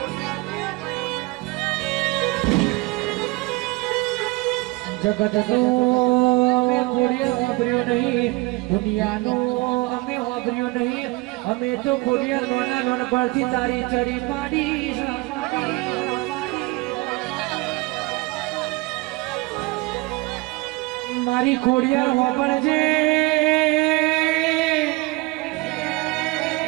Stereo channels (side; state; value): left; quieter; 23.3 dB